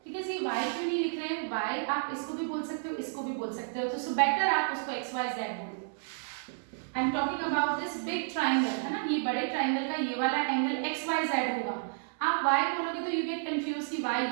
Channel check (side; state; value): left; silent; 57 dB below the other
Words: ठीक है जी, y क्यों नहीं लिख रहे हैं? y आप इसको भी बोल सकते हो, इसको भी बोल सकते हो, तो सो बेटर आप उसको xyz बोलो. I am talking about this big triangle, है ना? ये बड़े ट्राइंगल का ये वाला एंगल xyz होगा. आप y बोलोगे तो यू गेट कंफ्यूज कि y